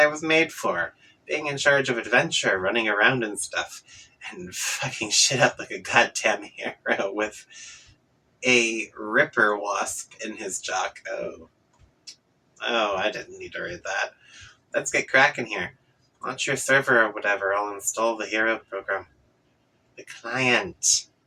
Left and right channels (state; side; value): identical; both; correlation 1.00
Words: was made for. Being in charge of adventure, running around and stuff, and fucking shit up like a goddamn hero with a ripper wasp in his jock. Oh, I didn't need to read that. Let's get cracking here. Launch your server or whatever, I'll install the hero program. The client.